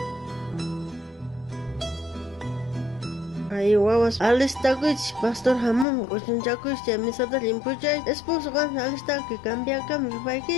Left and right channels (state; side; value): drops out; right; at 5.9 s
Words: Ay, wawas, alistakuch, Pastor Hamon, kuchunchakuch, misada limpuchay, esposo kan alistaku, cambia